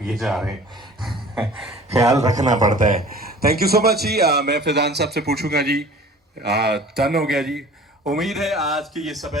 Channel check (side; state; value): both; normal; correlation 0.45